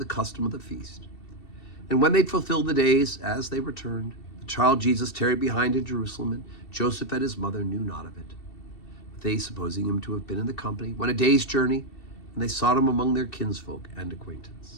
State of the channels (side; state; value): right; late; 2.7 ms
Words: custom of the feast. And when they'd fulfilled the days, as they returned, the child Jesus tarried behind in Jerusalem, and Joseph and his mother knew not of it. But they, supposing him to have been in the company, went a day's journey, and they sought him among their kinsfolk and